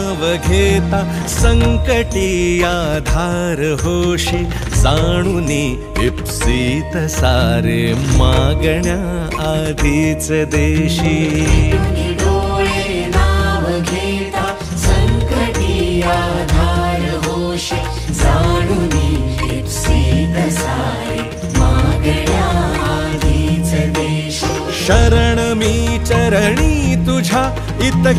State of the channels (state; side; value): identical; both; correlation 1.00